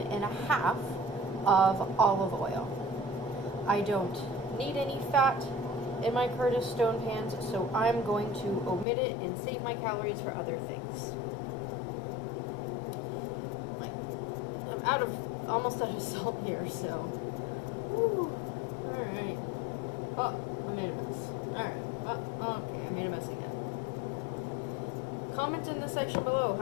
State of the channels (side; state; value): right; drops out; at 8.8 s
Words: and a half of olive oil. I don't need any fat in my Curtis Stone pans, so I'm going to omit it and save my calories for other things. I'm almost out of salt here, so. Whew. Alright. Oh, I made a mess. Alright. Oh, okay, I made a mess again. Comment in the section below